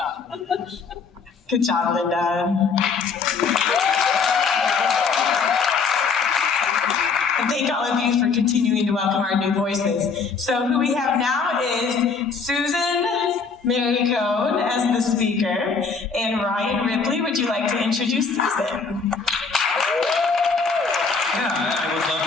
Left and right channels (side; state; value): right; quieter; 5.1 dB